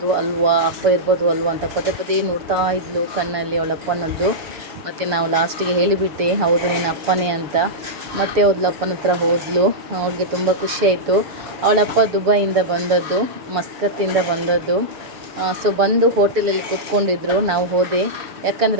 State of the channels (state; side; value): late; left; 6.9 ms